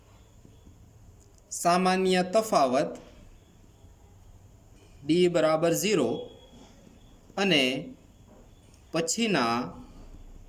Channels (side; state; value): both; identical; correlation 1.00